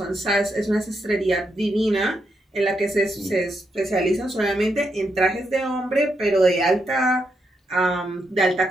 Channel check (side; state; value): both; normal; correlation 0.81